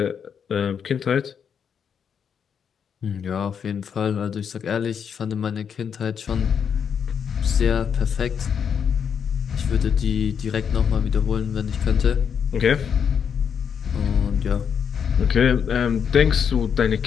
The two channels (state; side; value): quieter; right; 7.3 dB